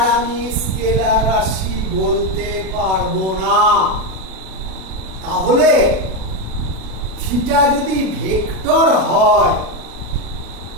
আমি স্কেলার রাশি বলতে পারবো না। তাহলে থিটা যদি ভেক্টর হয়,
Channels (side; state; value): left; late; 37 ms